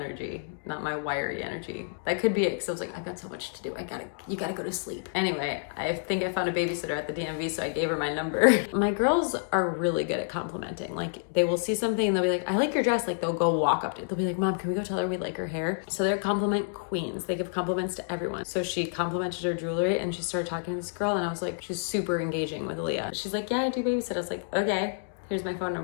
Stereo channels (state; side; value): silent; right; digital silence